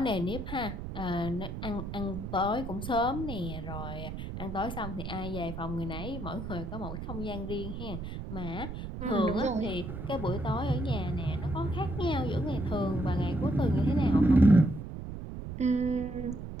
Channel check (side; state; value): right; noise; rumble, 7 dB below the sound